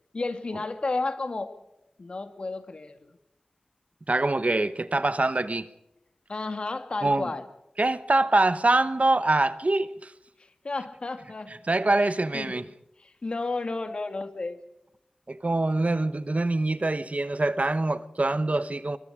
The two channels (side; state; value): both; normal; correlation 0.91